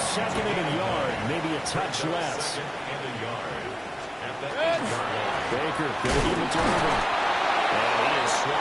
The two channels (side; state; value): both; identical; correlation 1.00